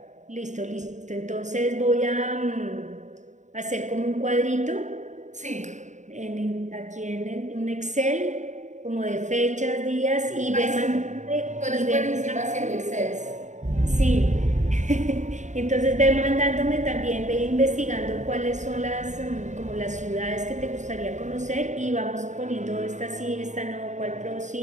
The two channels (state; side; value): late; left; 0.35 ms